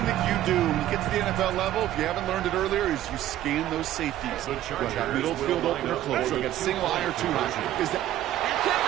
that you do when you get to the NFL level, if you haven't learned it earlier, is you scan those safeties. Whether that middle field open or close, so you got single eye or 2 eye. Is that...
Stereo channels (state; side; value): quieter; left; 13.2 dB